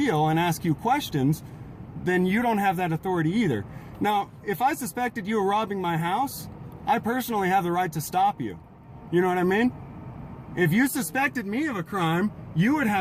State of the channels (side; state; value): both; identical; correlation 1.00